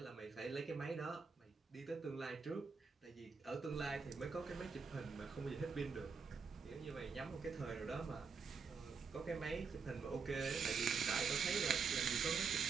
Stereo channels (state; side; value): quieter; left; 5.3 dB